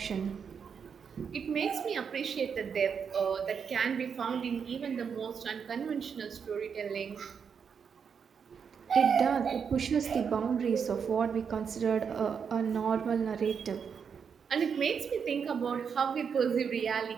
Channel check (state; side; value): quieter; left; 6.7 dB